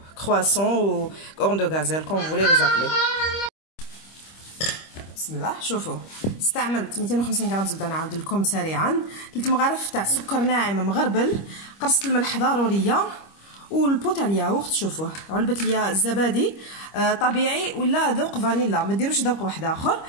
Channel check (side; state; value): right; late; 25 ms